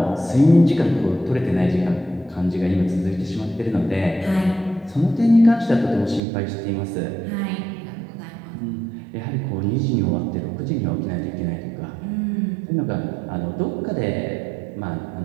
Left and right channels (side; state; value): left; drops out; at 6.2 s